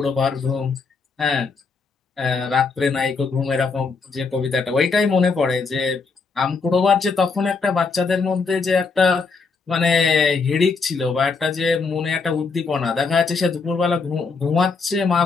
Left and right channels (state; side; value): quieter; right; 4.6 dB